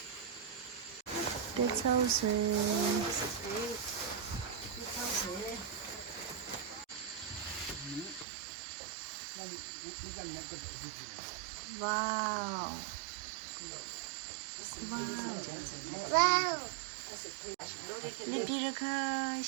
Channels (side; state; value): left; drops out; at 8.2 s